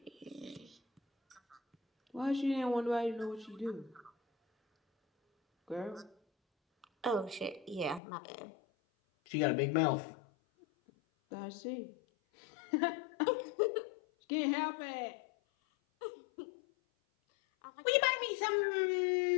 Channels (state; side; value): drops out; right; at 8.0 s